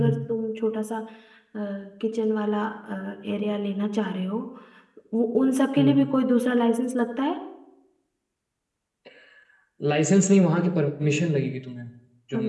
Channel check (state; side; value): identical; both; correlation 1.00